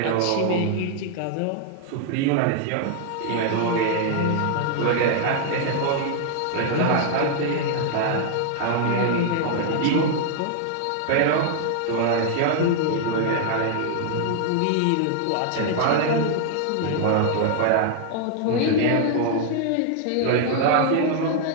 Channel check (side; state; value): both; different; correlation 0.00